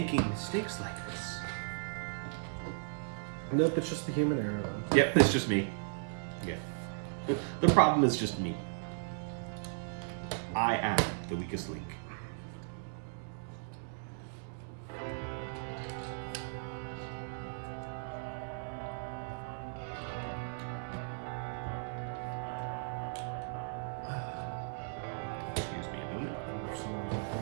mistakes like this. Nope, it's just the human error though. Yep, it's just me. Yeah. The problem is just me. I am the weakest link. Excuse me a minute. Or someone's at the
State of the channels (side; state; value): left; silent; digital silence